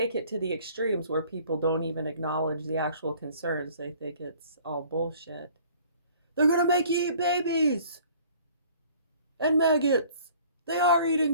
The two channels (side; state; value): both; inverted; correlation -0.53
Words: it to the extremes where people don't even acknowledge the actual concerns. They think it's all bullshit. They're gonna make you eat babies and maggots. They are eating